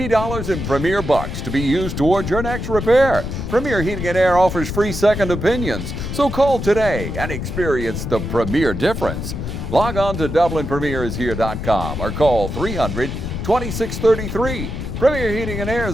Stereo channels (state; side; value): noise; left; rumble, 5 dB below the sound